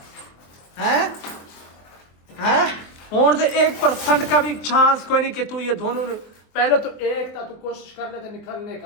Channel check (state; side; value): late; right; 24 ms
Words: है हैं? और तो 1% का भी चांस कोई नहीं कि तू ये दोनों पहले तो एक था, तू कोशिश कर लेते निकलने